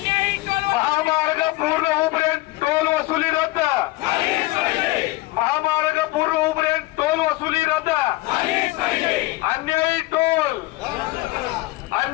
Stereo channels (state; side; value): quieter; right; 19.5 dB